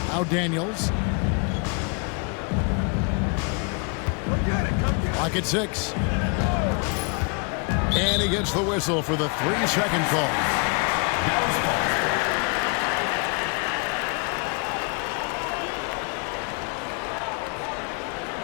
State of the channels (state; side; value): quieter; right; 35.0 dB